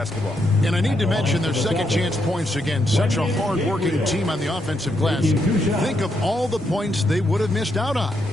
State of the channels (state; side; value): normal; both; correlation 0.79